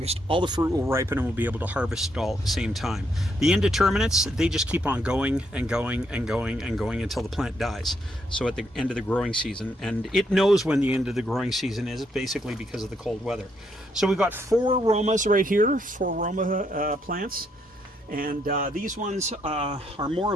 all the fruit will ripen and we'll be able to harvest it all at the same time. The indeterminates, they just keep on going and going and going and going until the plant dies. So at the end of the growing season, and it knows when the end of the growing season is, basically because of the cold weather. So we've got 4 Romas right here, 4 Roma plants. And these ones are more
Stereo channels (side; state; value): both; normal; correlation 0.75